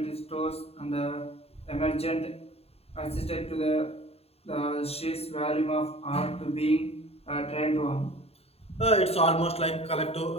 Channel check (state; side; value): late; right; 0.29 ms